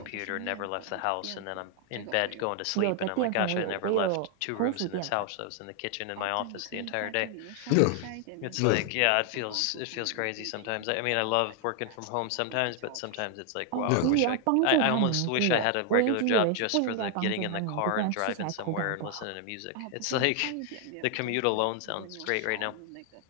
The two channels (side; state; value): both; different; correlation 0.00